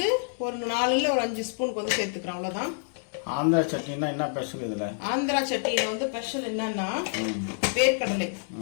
ஒரு 4 ஒரு 5 ஸ்பூனுக்கு வந்து சேர்த்துக்கிறோம், அவ்வளோதான். ஆந்திரா சட்னினா என்ன ஸ்பெஷல் இதில்? ஆந்திரா சட்னியில் வந்து ஸ்பெஷல் என்னன்னா வேர்க்கடலை,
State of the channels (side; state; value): right; silent; digital silence